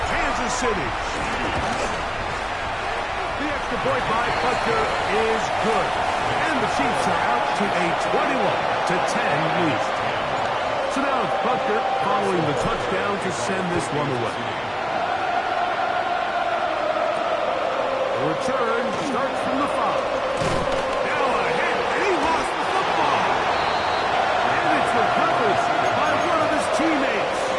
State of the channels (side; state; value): both; identical; correlation 1.00